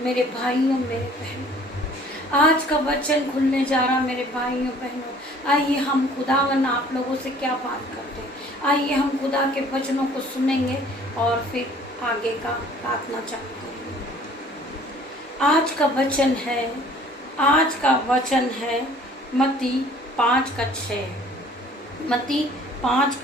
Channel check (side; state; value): both; normal; correlation 0.53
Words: मेरे भाइयों मेरे बहनों, आज का वचन खुलने जा रहा मेरे भाइयों बहनों। आइए हम खुदावन आप लोगों से क्या बात करते हैं। आइए हम खुदा के वचनों को सुनेंगे और फिर आगे का प्रार्थना चालू करेंगे। आज का वचन है मत्ती 5:6। मत्ती